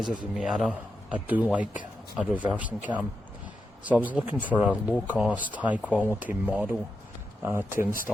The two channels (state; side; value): normal; both; correlation 0.87